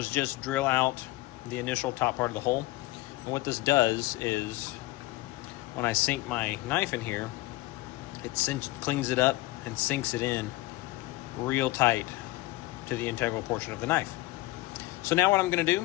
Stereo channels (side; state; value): right; quieter; 19.5 dB